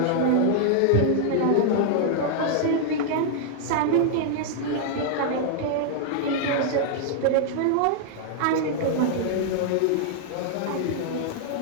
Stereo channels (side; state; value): both; different; correlation -0.01